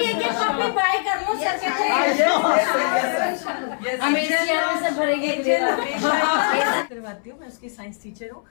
एक कॉपी बाय कर लो सर करवाती हूँ। मैं उसकी साइंस टीचर हूँ।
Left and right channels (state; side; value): silent; right; 64 dB below the other